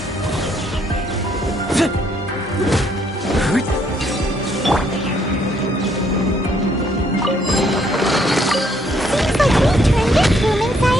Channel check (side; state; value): both; normal; correlation 0.69